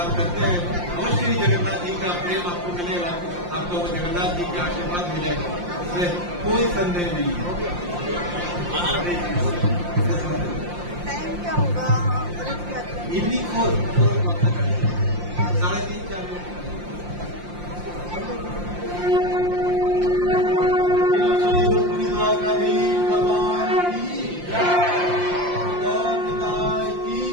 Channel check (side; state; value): left; late; 5.7 ms